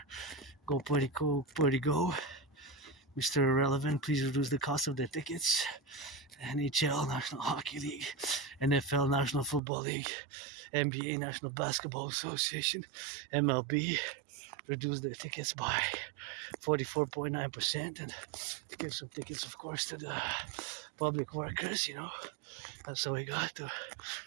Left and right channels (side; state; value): left; drops out; at 9.6 s